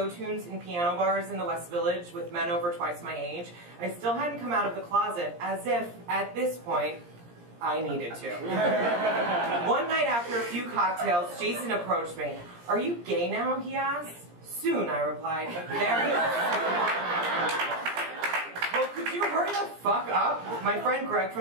tunes in piano bars in the West Village with men over twice my age, I still hadn't come out of the closet, as if, at this point, I needed to. One night after a few cocktails, Jason approached me. "Are you gay now?" he asked. "Soon," I replied. "Very soon." "Well, could you hurry the fuck up? My friend Greg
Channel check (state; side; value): late; left; 17 ms